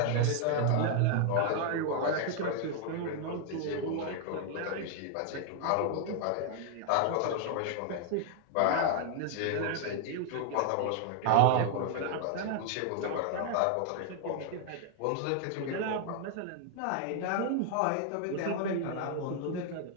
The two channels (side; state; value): both; different; correlation 0.00